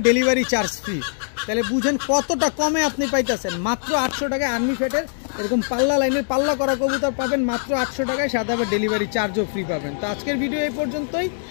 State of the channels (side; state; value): right; silent; digital silence